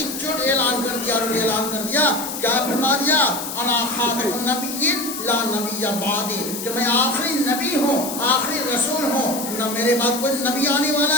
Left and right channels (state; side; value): noise; left; hiss, 7 dB below the sound